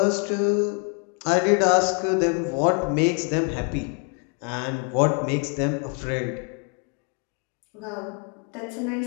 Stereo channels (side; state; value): right; quieter; 37.7 dB